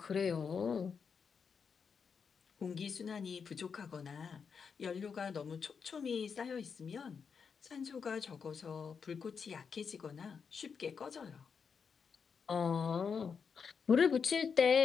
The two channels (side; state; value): right; quieter; 6.1 dB